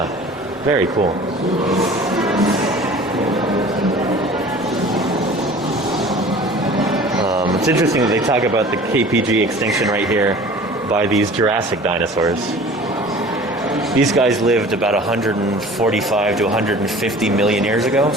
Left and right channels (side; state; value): both; normal; correlation 0.44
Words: very cool. It's interesting that they talk about the KPG extinction right here by these Jurassic dinosaurs. These guys lived about 145 to 150 million years ago,